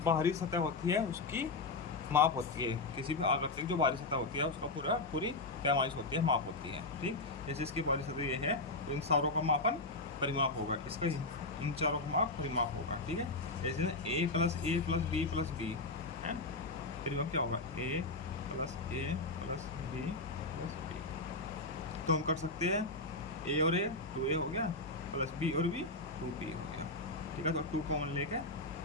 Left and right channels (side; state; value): right; quieter; 3.1 dB